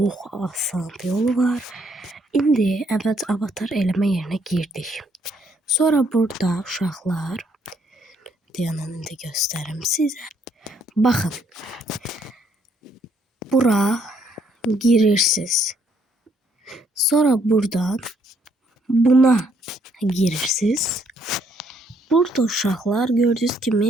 asan bir yolu var. İndi əvvəlcə avatar eləmə yerinə girdik. Sonra burada uşaqlar, dayanın indi göstərim sizə. Baxın. Bura girirsiniz. Sonra buradan buna girirsiniz. Burada uşaqlar gördüğünüz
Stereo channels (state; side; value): normal; both; correlation 0.69